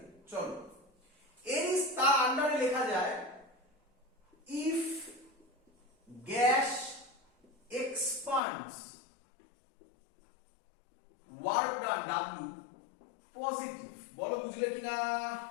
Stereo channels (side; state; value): right; drops out; at 8.4 s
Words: চলো, এর তার আন্ডারে লেখা যায় if gas expands work done W positive. বলো বুঝলে কিনা?